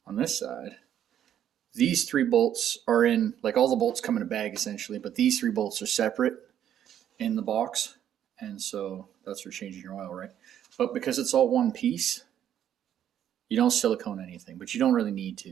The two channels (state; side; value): quieter; left; 10.3 dB